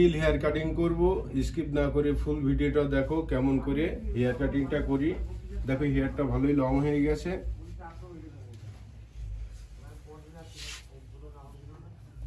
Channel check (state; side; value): identical; both; correlation 1.00